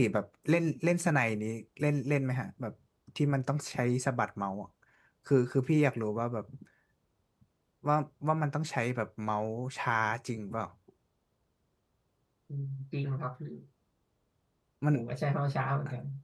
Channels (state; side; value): identical; both; correlation 1.00